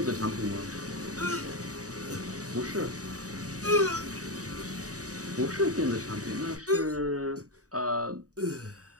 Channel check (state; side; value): late; left; 0.66 ms